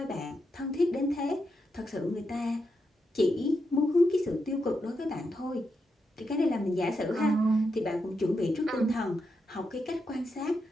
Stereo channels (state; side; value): normal; both; correlation 0.84